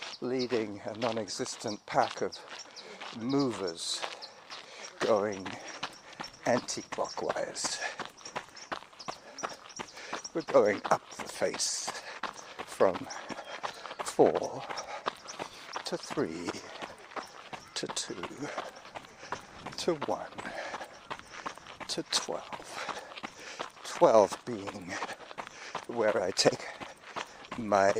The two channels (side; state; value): both; identical; correlation 1.00